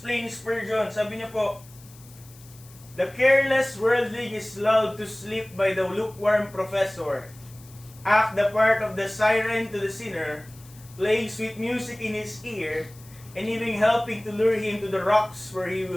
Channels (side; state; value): left; noise; hiss, 23 dB below the sound